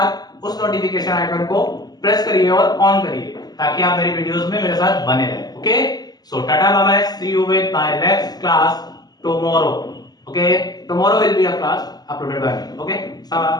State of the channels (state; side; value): late; right; 0.20 ms